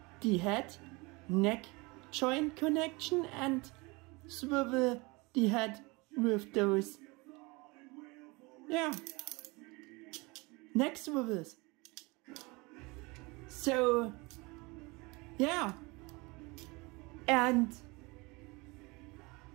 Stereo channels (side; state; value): left; quieter; 25.6 dB